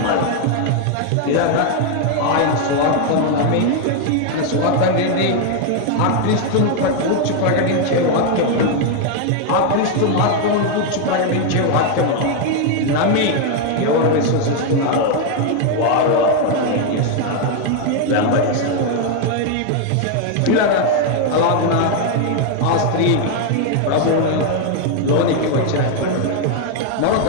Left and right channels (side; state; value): both; different; correlation 0.01